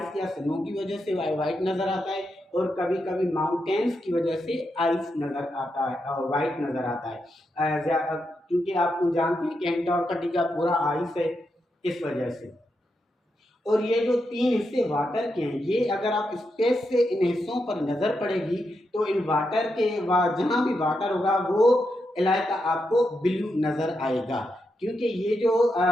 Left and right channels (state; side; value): normal; both; correlation 0.84